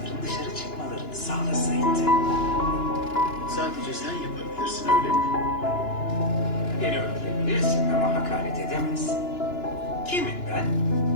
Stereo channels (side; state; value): right; late; 2.9 ms